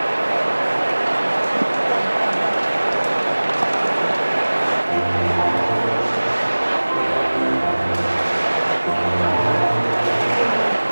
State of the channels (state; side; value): inverted; both; correlation -1.00